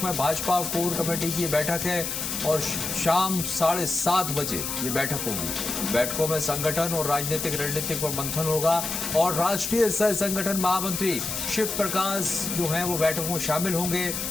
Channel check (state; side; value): noise; left; hiss, 3 dB below the sound